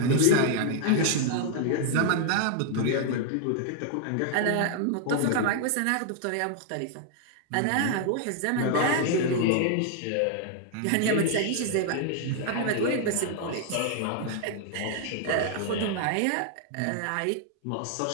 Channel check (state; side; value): different; both; correlation 0.00